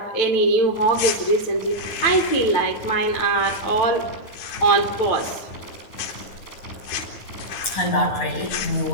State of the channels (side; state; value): right; late; 9.6 ms